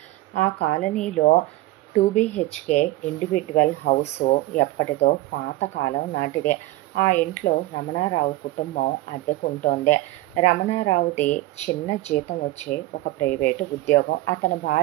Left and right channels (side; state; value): left; quieter; 17.8 dB